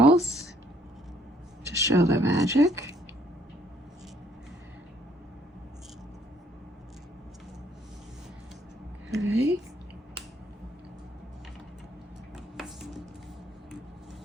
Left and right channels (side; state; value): both; normal; correlation 0.65